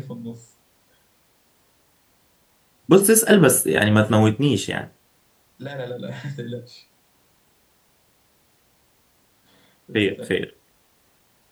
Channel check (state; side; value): identical; both; correlation 1.00